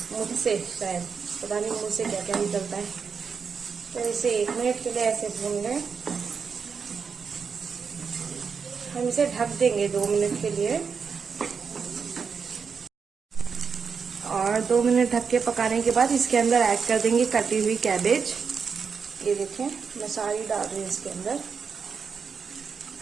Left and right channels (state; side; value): quieter; left; 5.9 dB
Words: मुझसे शायद, पता नहीं मुझसे क्या क्या निकलता है। तो इसे 1 मिनट के लिए ऐसे भून लें। हम इसे ढक देंगे 2 मिनट के लिए, और 2 मिनट ढक के पकाने के बाद इसके अंदर ऐड कर देंगे कटी हुई कैबेज। ये देखें मैं सारी डाल रही हूँ इसके अंदर,